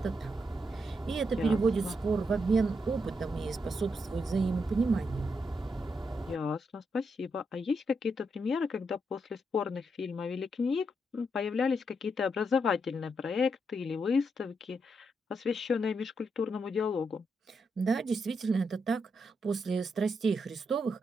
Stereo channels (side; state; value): both; normal; correlation 0.81